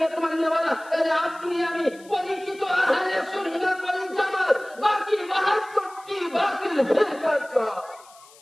মাননেওয়ালা, তাহলে আপনি আমি পরিচিত আহলে সুন্নাত ওয়াল জামাত। বাকি ৭২টি বাতিল ফিরকা,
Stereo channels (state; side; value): noise; left; hiss, 25 dB below the sound